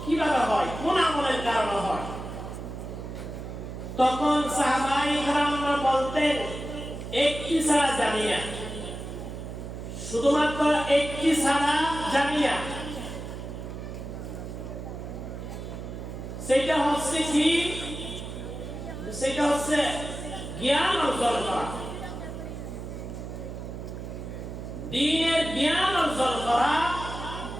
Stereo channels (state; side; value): noise; right; hum, 8 dB below the sound